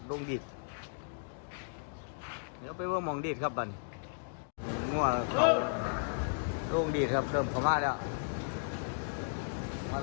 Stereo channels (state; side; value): silent; right; digital silence